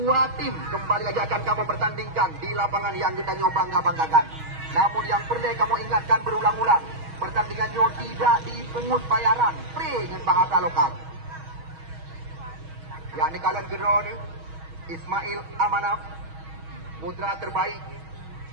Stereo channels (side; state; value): left; late; 6.3 ms